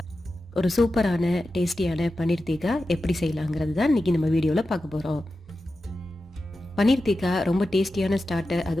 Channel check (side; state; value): both; normal; correlation 0.92